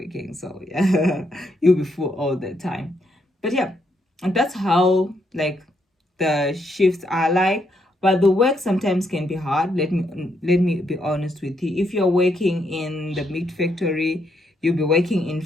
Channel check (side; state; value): both; normal; correlation 0.76